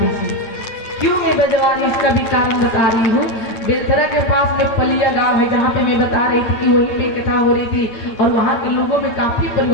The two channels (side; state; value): right; late; 9.0 ms